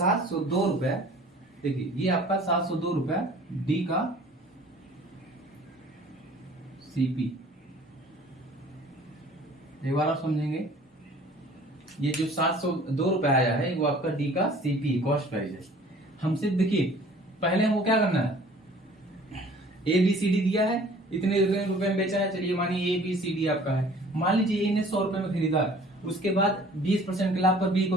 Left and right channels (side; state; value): both; normal; correlation 0.50